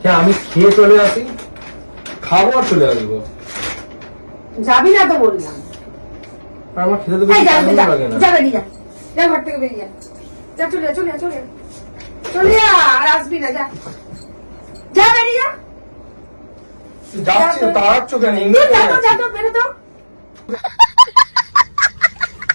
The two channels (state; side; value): inverted; both; correlation -1.00